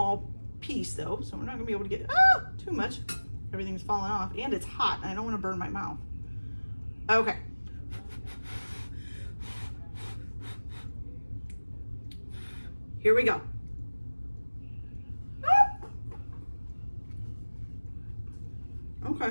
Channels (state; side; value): inverted; both; correlation -1.00